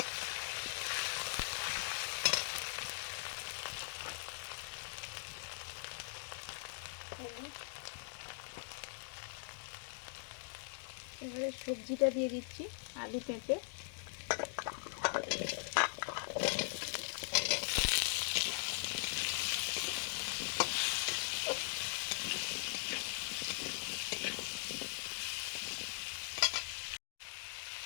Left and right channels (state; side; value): silent; right; digital silence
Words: হলুদ। এবারে সবজিটা দিয়ে দিচ্ছি, আলু পেঁপে।